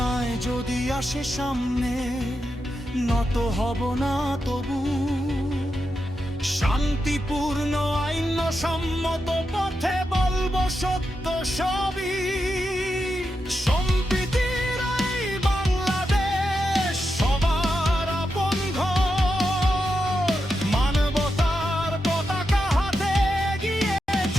যদি আসে সামনে, নত হব না তবু, শান্তিপূর্ণ আইন সম্মত পথে বলবো সত্য সবই। সম্প্রীতির এই বাংলাদেশ সবার আপন ঘর, মানবতার পতাকা হাতে এগিয়ে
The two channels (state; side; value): normal; both; correlation 0.87